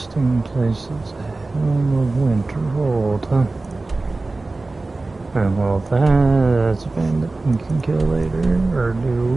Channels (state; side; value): quieter; left; 3.3 dB